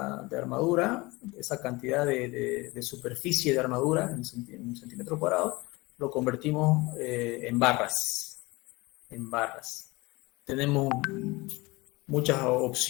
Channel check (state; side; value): quieter; right; 23.2 dB